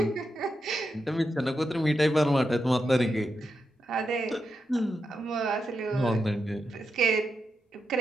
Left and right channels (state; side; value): normal; both; correlation 0.86